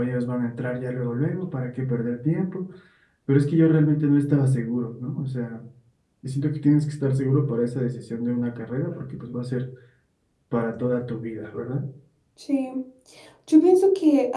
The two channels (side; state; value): both; identical; correlation 1.00